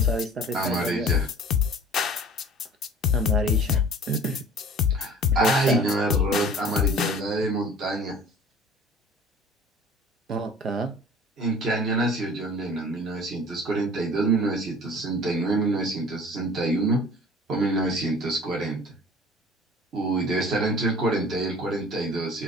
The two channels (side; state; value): both; normal; correlation 0.46